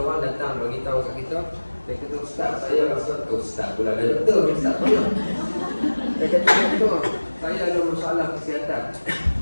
datang bagi tahu kat kita, dia kata, ustaz, saya rasa ustaz pula ada doktor, ustaz mana? Dia kata, doktor, saya ada masalah kesihatan.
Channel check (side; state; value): both; inverted; correlation -1.00